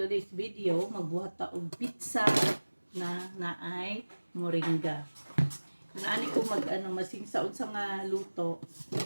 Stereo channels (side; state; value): both; inverted; correlation -1.00